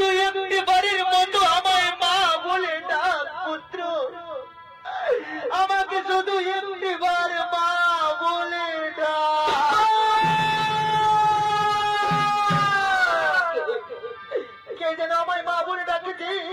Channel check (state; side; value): identical; both; correlation 1.00